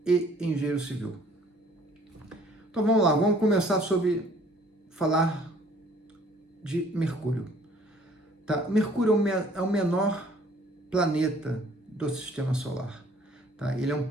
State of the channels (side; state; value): both; normal; correlation 0.56